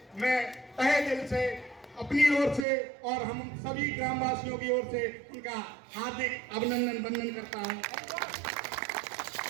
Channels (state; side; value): drops out; left; at 2.7 s